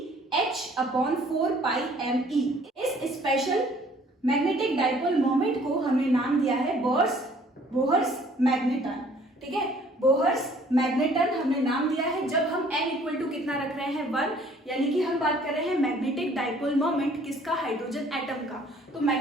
h upon 4 pi m e। इस स्पेशल मैग्नेटिक डाइपोल मोमेंट को हमने नाम दिया है बोहर्स मैग्नेटन। ठीक है, बोहर्स मैग्नेटन हमने नाम दिया है जब हम n इक्वल टू कितना रख रहे हैं, 1, यानी कि हम बात कर रहे हैं मैग्नेटिक डाइपोल मोमेंट किसका, हाइड्रोजन एटम का। तो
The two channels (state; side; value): normal; both; correlation 0.57